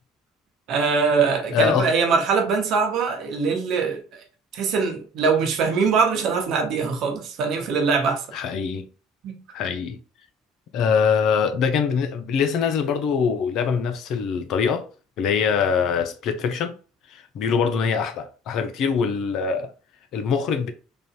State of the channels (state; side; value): normal; both; correlation 0.46